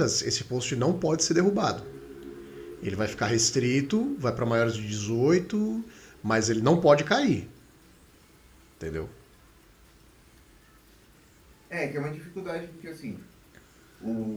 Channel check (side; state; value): both; identical; correlation 1.00